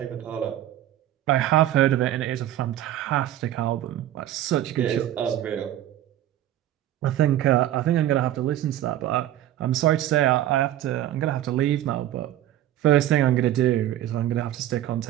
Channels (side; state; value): left; quieter; 12.8 dB